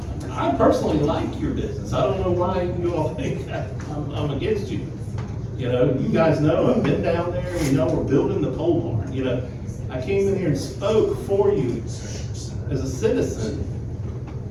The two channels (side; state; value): both; identical; correlation 1.00